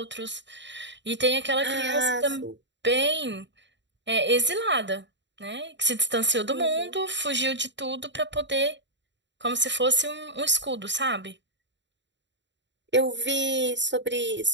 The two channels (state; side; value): late; left; 0.52 ms